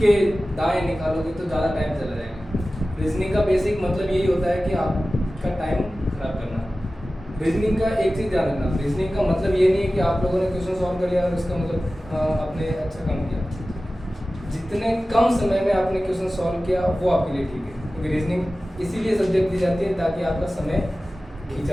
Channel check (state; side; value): normal; both; correlation 0.96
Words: दाएं निकालोगे तो ज़्यादा टाइम चला जाएगा। रीजनिंग का बेसिक मतलब यही होता है कि आपका टाइम खराब करना। रीजनिंग का एक चीज़ ध्यान रखना, रीजनिंग का मतलब ये नहीं है कि आप लोगों ने क्वेश्चन सॉल्व कर लिया और इसका मतलब आपने अच्छा काम किया। जितने कम समय में आपने क्वेश्चन सॉल्व किया वो आपके लिए ठीक है, क्योंकि रीजनिंग इसीलिए सब्जेक्ट दी जाती है ताकि आपका समय